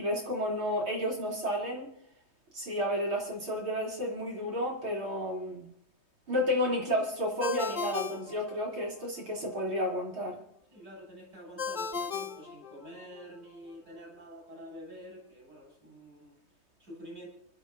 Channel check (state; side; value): late; left; 3.2 ms